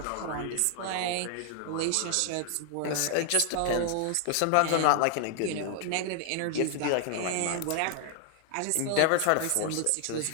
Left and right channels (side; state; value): both; different; correlation 0.00